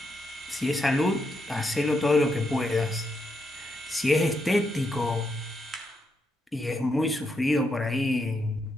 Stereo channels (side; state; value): both; normal; correlation 0.81